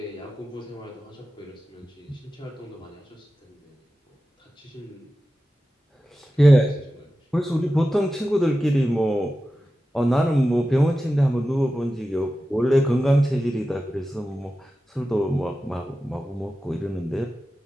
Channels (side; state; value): both; normal; correlation 0.93